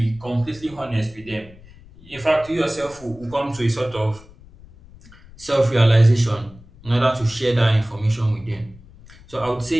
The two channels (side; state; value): left; noise; rumble, 22 dB below the sound